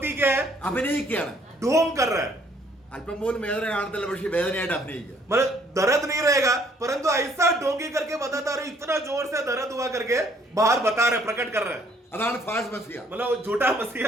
क्या है, അഭിനയിക്കുകയാണ്. ढोंग कर रहा है, അല്പം പോലും വേദന കാണത്തില്ല, പക്ഷെ വേദനയായിട്ട് അഭിനയിക്കുക. मतलब दर्द नहीं रहेगा, परंतु ऐसा ढोंगी करके बताता रहे, इतना जोर से दर्द हुआ करके बाहर बता रहे, प्रकट कर रहे हैं. അതാണ് ഫാൾസ് മസിഹ. मतलब झूठा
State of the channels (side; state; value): both; normal; correlation 0.64